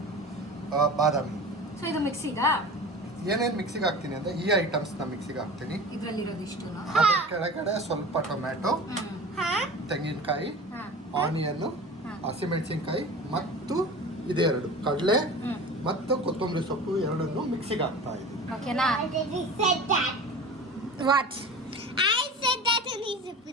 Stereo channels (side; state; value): both; normal; correlation 0.36